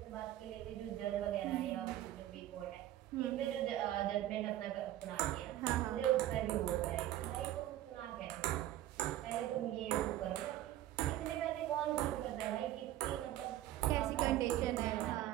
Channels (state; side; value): quieter; left; 13.5 dB